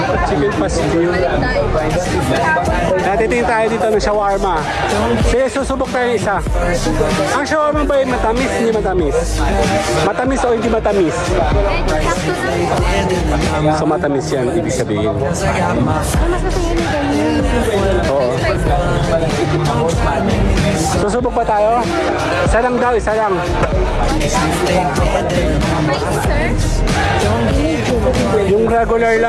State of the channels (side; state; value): both; identical; correlation 1.00